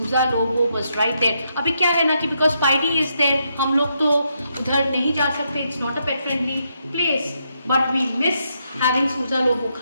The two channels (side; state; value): both; inverted; correlation -0.79